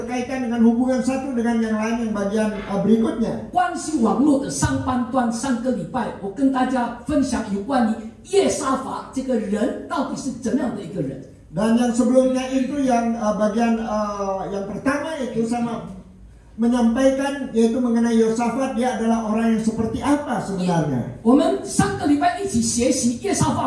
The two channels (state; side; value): identical; both; correlation 1.00